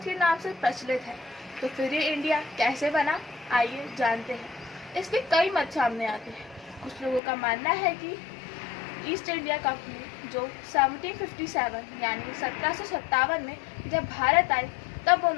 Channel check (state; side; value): drops out; right; at 7.2 s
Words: के नाम से प्रचलित है, तो फिर ये इंडिया कैसे बना, आइए जानते हैं। इसके कई मत सामने आते हैं। कुछ लोगों का मानना है कि ईस्ट इंडिया कंपनी जो 1757 यानी 1757 में जब भारत आई, तब